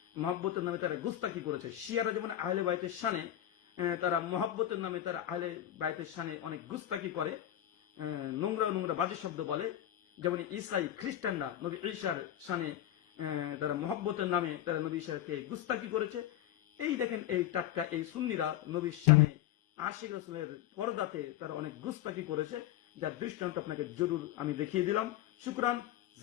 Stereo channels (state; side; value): quieter; right; 12.3 dB